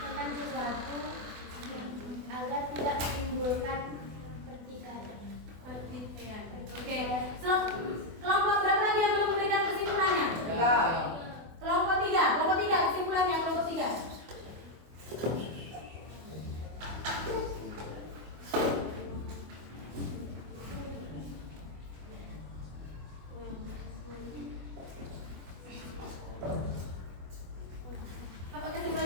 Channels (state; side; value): late; left; 24 ms